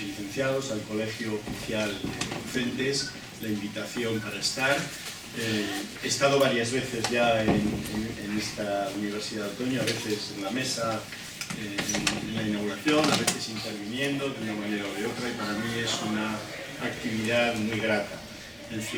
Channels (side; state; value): both; identical; correlation 1.00